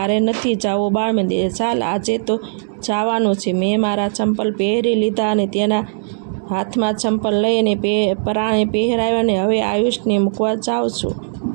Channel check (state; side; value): silent; left; digital silence